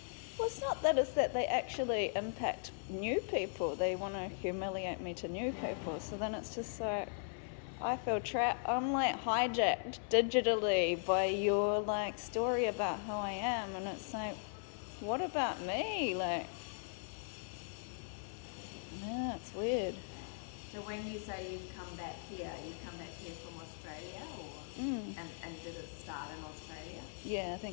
Well, it's not that, it's that they actually impact new people. They want to humiliate me to new people. So then it's just like, I feel trapped. I'm like hijacked digitally by your like story about who I am, and it's like, what about me? Like, yeah, it's weird. So when you say you've come back here from Australia, or and did it start in Australia? Yeah, I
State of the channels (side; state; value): right; silent; 52 dB below the other